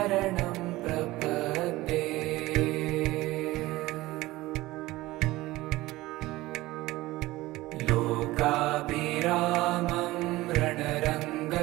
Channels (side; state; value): left; quieter; 18.6 dB